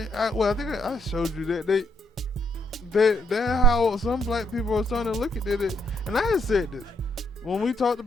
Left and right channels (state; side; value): normal; both; correlation 0.73